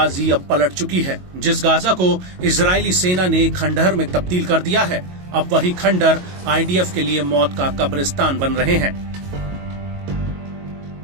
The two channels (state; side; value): late; left; 22 ms